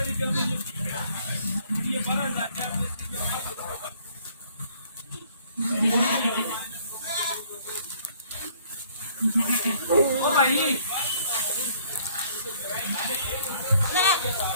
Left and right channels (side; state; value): both; inverted; correlation -0.61